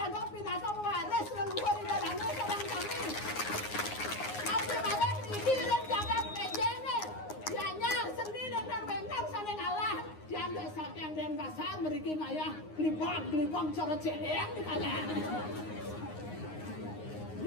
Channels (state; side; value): late; right; 9.6 ms